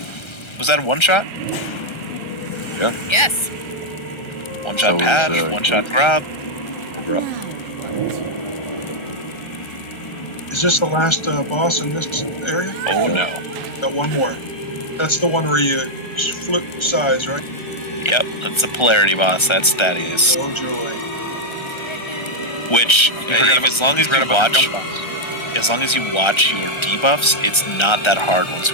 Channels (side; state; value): right; late; 1.3 ms